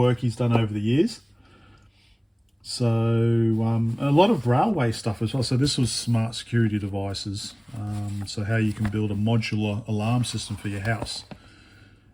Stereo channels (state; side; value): identical; both; correlation 1.00